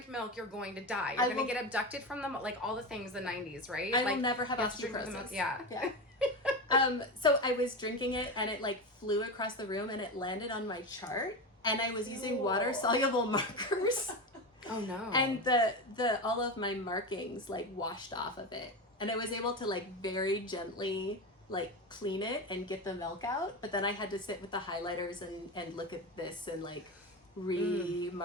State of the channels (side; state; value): both; normal; correlation 0.20